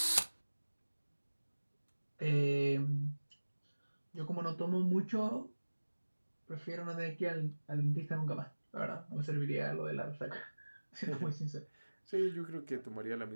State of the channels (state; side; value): inverted; both; correlation -1.00